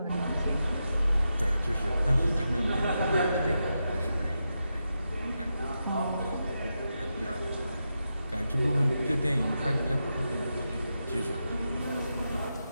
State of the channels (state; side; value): inverted; both; correlation -0.87